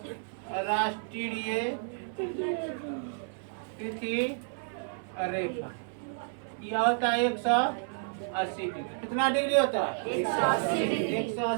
तिथि रेखा, यह होता है 180 डिग्री। कितना डिग्री होता है?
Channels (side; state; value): left; silent; 57 dB below the other